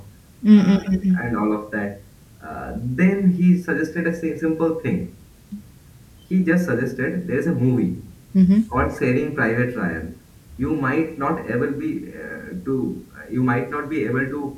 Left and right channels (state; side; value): identical; both; correlation 1.00